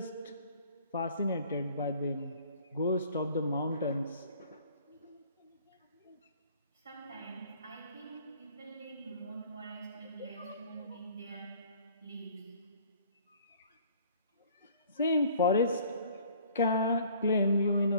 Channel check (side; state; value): both; inverted; correlation -0.54